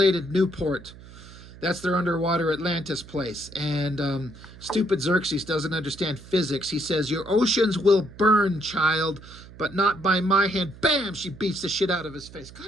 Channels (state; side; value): noise; right; hum, 18 dB below the sound